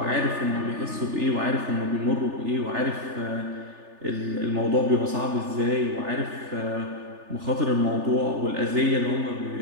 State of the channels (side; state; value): left; late; 3.4 ms